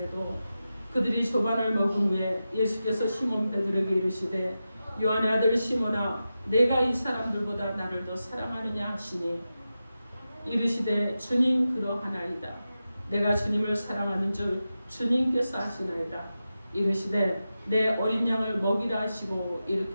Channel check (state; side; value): inverted; both; correlation -0.92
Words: 그들이 조반을 먹은 후에 예수께서 시몬 베드로에게 이르시되 요한의 아들 시몬아 내가 이 사람들보다 나를 더 사랑하느냐 하시니 이르시되 주님 그러하나이다. 내가 주님을 사랑하는 줄 주님께서 아시나이다. 이르시되 내 어린 양을 먹이라 하시고